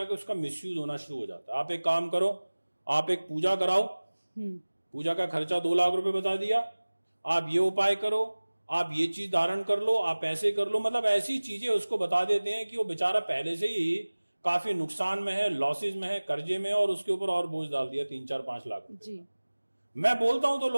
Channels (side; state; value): both; inverted; correlation -1.00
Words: उसका मिसयूज होना शुरू हो जाता है। आप एक काम करो, आप एक पूजा कराओ, पूजा का खर्चा 2 लाख रुपए बता दिया, आप ये उपाय करो, आप ये चीज धारण कर लो, आप ऐसे कर लो, मतलब ऐसी चीजें उसको बता देते हैं कि वो बेचारा पहले से ही काफी नुकसान में है, लॉसेज में है, कर्जे में है और उसके ऊपर और बोझ डाल दिया 3, 4, 5 लाख रुपए जी। मैं बोलता हूं तो